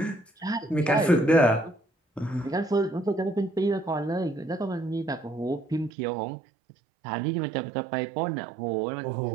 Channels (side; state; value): left; drops out; at 5.9 s